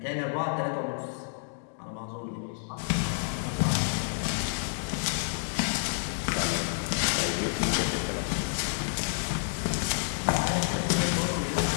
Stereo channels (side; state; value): right; silent; digital silence